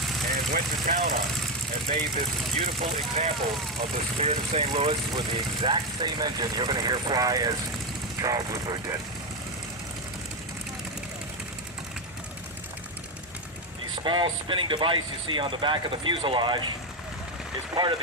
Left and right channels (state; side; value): normal; both; correlation 0.08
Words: and went to town on it and made this beautiful example of the Spirit of St. Louis with the exact same engine you're going to hear fly as Charles Lindbergh did. The small spinning device you see on the back of the fuselage is part of